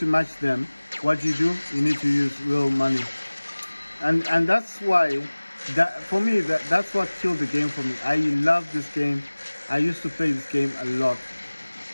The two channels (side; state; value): both; inverted; correlation -1.00